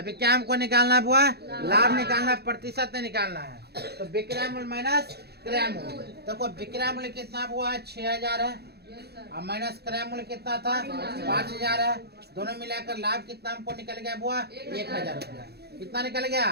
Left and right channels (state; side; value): late; left; 0.47 ms